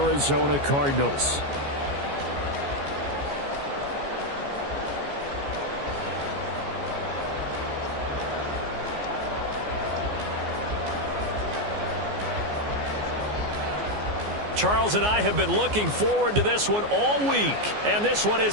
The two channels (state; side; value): late; left; 14 ms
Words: Cardinals. Charles and I have been looking forward to this one all week, and this one